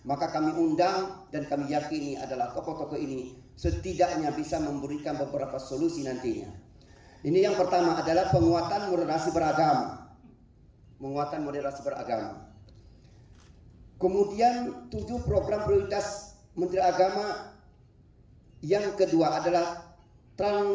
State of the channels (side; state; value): both; identical; correlation 1.00